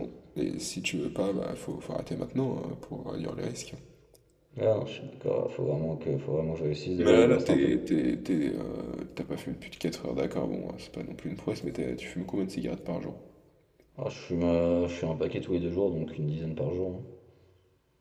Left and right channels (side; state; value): both; identical; correlation 1.00